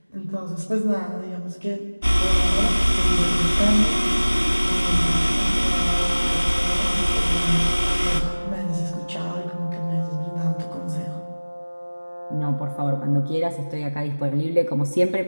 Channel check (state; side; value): inverted; both; correlation -1.00